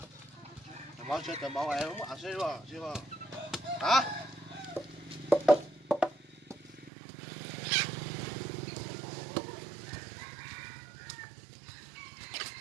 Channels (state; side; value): drops out; left; at 6.9 s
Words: máu chết tờ máu em không ăn xí vào xí vào hả